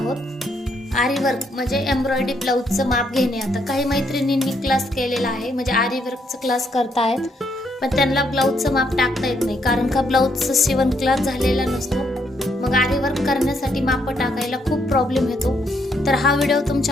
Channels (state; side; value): normal; both; correlation 0.74